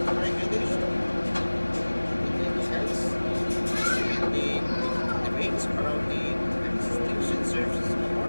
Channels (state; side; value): inverted; both; correlation -1.00